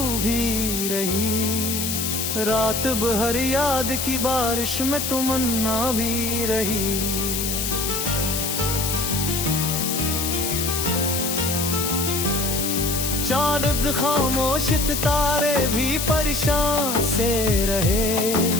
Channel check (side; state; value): left; noise; hiss, 1 dB below the sound